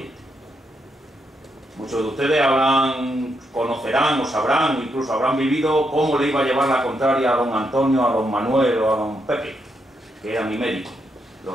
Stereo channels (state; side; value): normal; both; correlation 0.80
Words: Muchos de ustedes conocerán o sabrán o incluso habrán vivido cómo le iba a llevar la contraria a don Antonio, a don Manuel o a don Pepe, que era mi médico.